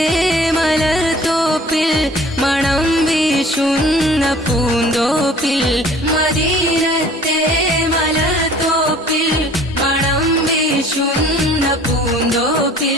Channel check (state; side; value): normal; both; correlation 0.51